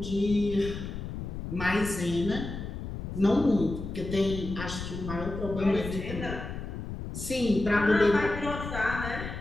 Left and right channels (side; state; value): left; noise; rumble, 7 dB below the sound